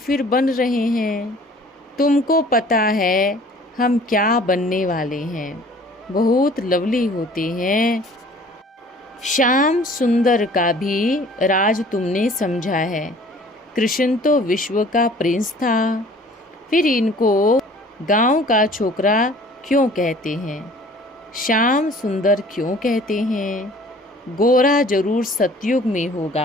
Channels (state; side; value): normal; both; correlation 0.51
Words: बन रहे हैं। तुमको पता है हम क्या बनने वाले हैं। बहुत लवली होते हैं। श्याम सुंदर का भी राज तुमने समझा है। कृष्ण तो विश्व का प्रिंस था, फिर इनको गांव का छोकरा क्यों कहते हैं? श्याम सुंदर क्यों कहते हैं? गोरा जरूर सतयुग में